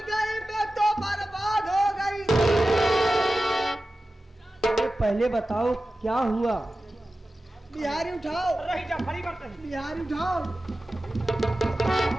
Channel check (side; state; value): both; normal; correlation 0.94